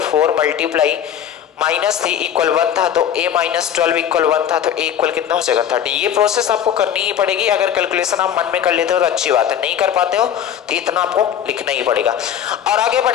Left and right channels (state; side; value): quieter; right; 9.4 dB